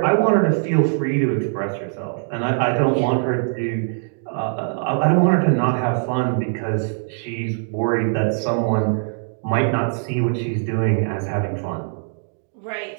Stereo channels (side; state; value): left; silent; digital silence